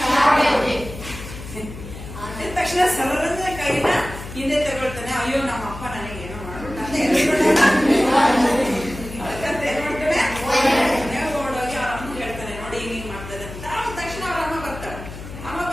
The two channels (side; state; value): left; noise; hum, 12 dB below the sound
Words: ತಕ್ಷಣ ಸರಳಂದ ಕೈನ ಹಿಂದೆ ತಗೊಳ್ತಾನೆ. ಅಯ್ಯೋ ನಮ್ಮ ಅಪ್ಪ ನನಗೆ ಏನೋ ಮಾಡ್ಬಿಟ್ಟಂತ ಓಡೋಗಿ ಅವ್ರ ಅಮ್ಮ ಹೇಳ್ತಾನೆ, ನೋಡಿ ಹಿಂಗ್ ಮಾಡ್ತದೆ ಅಂತ. ತಕ್ಷಣ ಅವ್ರ ಅಮ್ಮ ಬರ್ತಾಳೆ. ಅಮ್ಮ